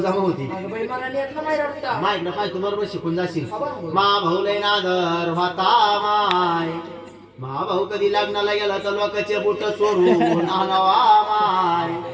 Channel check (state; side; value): identical; both; correlation 1.00